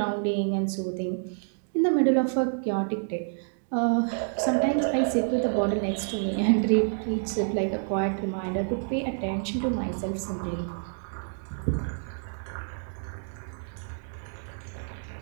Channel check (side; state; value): left; silent; digital silence